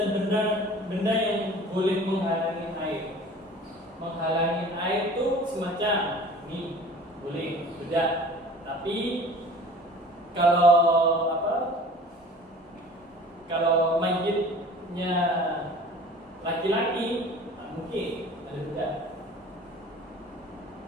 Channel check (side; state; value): both; normal; correlation 0.45